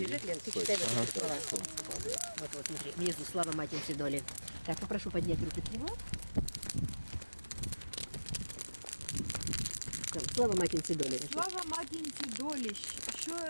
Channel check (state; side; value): inverted; both; correlation -1.00